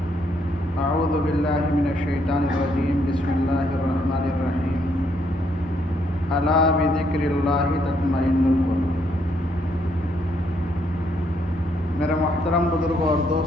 أعوذ بالله من الشيطان الرجيم بسم الله الرحمن الرحيم ألا بذكر الله تطمئن القلوب۔ میرے محترم بزرگوں اور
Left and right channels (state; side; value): normal; both; correlation 0.72